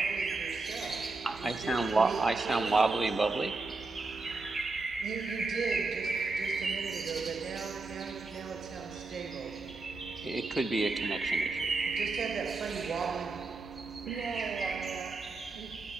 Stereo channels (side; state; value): left; quieter; 3.6 dB